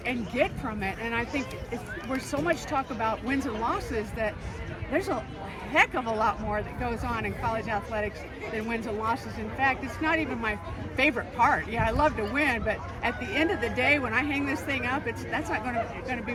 and get from it. And I think we're so much talk about wins and losses that there's a heck of a lot more that goes on in college athletics than wins and losses. In fact, it's not even my favorite part. Yeah, I love to win, but at the end of the day, when I hang this thing up, that's not going to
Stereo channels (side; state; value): both; identical; correlation 1.00